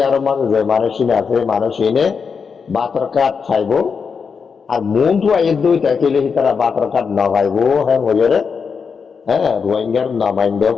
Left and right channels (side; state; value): right; quieter; 5.8 dB